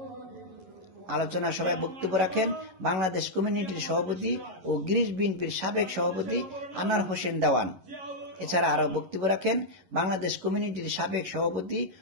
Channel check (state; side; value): late; left; 11 ms